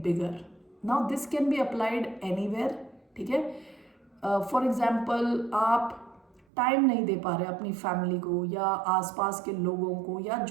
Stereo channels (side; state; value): left; drops out; at 6.4 s